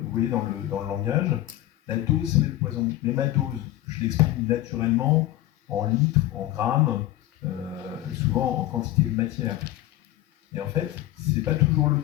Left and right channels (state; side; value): quieter; right; 15.0 dB